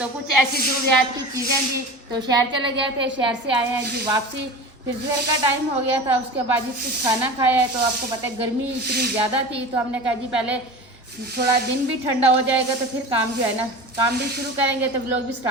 कुछ ऐसी ज़रूरियात की चीज़ें जी, तो शहर चले गए थे। शहर से आए हैं जी वापसी, फिर दोपहर का टाइम हो गया था। उसके बाद जी कुछ खाना खाया है। तो आपको पता है गर्मी इतनी ज़्यादा थी, तो हमने कहा जी पहले थोड़ा दिन भी ठंडा हो जाएगा तो फिर काम जो है ना काम भी शुरू करेंगे, तो व्लॉग भी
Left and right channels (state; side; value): normal; both; correlation 0.33